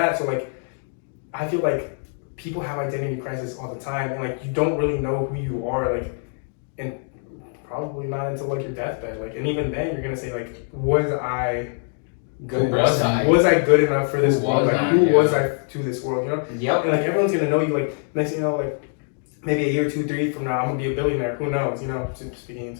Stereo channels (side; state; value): right; silent; 60 dB below the other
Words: So like, I feel like people have identity crisis all the time, and like you don't really know who you are, like, and probably not until like your deathbed. Like, and even then, you're gonna say like, was I good? Who was I? Was I good enough for this Who world? was Like, I? who Yeah. was I to this world? Yep. And like everyone's gonna know you. Like next thing you know, like maybe a year, 2, 3 from now, I'm gonna be a billionaire. Who knows? Speaking